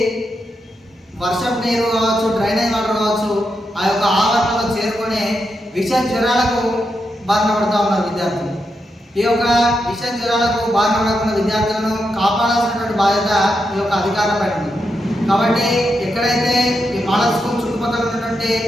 వర్షపు నీరు కావచ్చు, డ్రైనేజ్ వాటర్ కావచ్చు, ఆ యొక్క ఆవరణలో చేరుకొని విష జ్వరాలకు బారిన పడుతూ ఉన్నారు విద్యార్థులు. ఈ యొక్క విష జ్వరాలకు బారిన పడకుండా విద్యార్థులను కాపాడాల్సినటువంటి బాధ్యత ఈ యొక్క అధికారులపై ఉంది. కాబట్టి ఎక్కడైతే ఈ మోడల్ స్కూల్ చుట్టుపక్కల ఉన్నటువంటి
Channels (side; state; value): both; normal; correlation 0.84